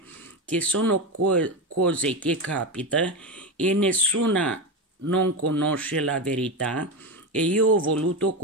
che sono cose che capitano e nessuna non conosce la verità, e io ho voluto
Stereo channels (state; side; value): normal; both; correlation 0.16